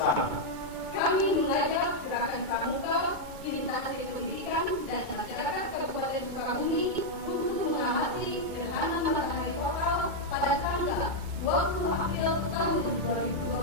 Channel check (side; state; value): left; late; 2.2 ms